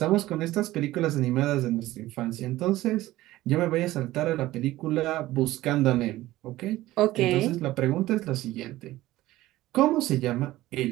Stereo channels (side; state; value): left; quieter; 16.5 dB